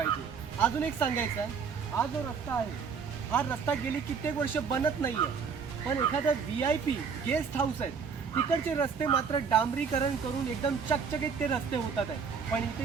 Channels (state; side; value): quieter; left; 6.0 dB